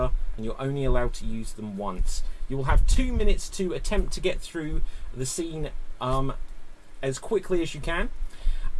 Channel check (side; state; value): both; identical; correlation 1.00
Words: and you're only allowed to use them once. You will have 2 minutes to attempt to get through the scene as quickly as you can.